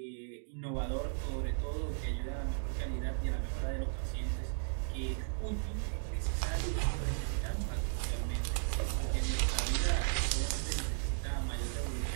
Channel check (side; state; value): left; silent; digital silence